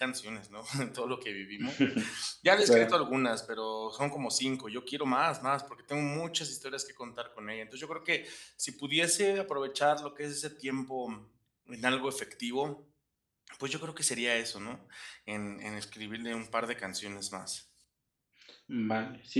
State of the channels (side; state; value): both; identical; correlation 1.00